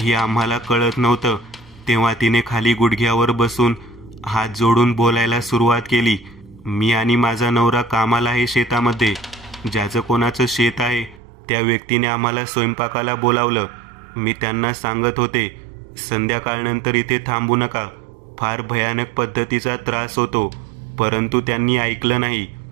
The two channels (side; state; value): left; drops out; at 11.2 s